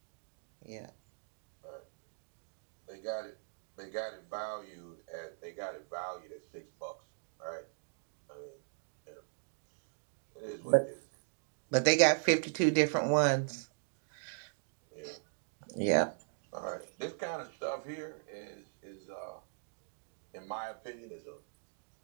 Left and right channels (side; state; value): left; silent; digital silence